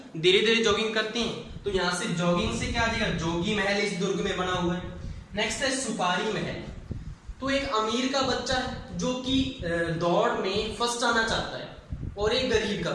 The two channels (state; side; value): identical; both; correlation 1.00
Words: धीरे धीरे जॉगिंग करते हैं। तो यहां से जॉगिंग से क्या आ जाएगा, जोगी महल इस दुर्ग में बना हुआ है। नेक्स्ट है सुपारी महल। तो एक अमीर का बच्चा है जो कि दौड़ में फर्स्ट आना चाहता है, और एक गरीब का